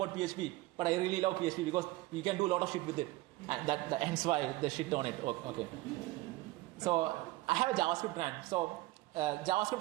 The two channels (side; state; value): left; quieter; 19.0 dB